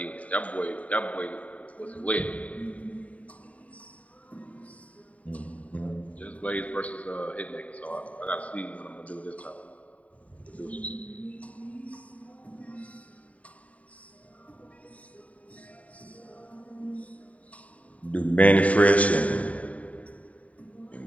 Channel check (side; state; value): right; late; 0.068 ms